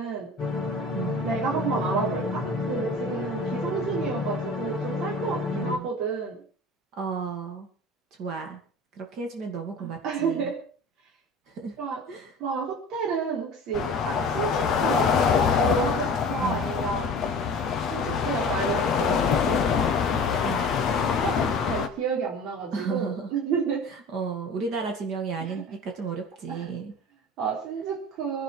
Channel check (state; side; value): normal; both; correlation 0.39